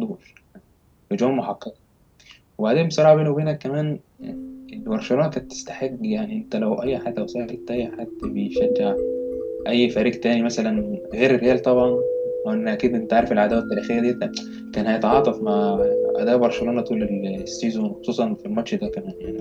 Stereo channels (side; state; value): both; identical; correlation 1.00